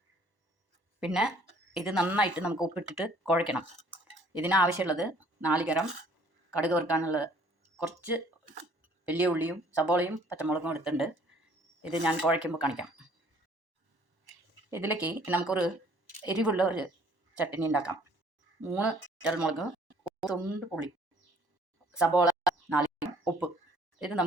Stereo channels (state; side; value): late; left; 1.1 ms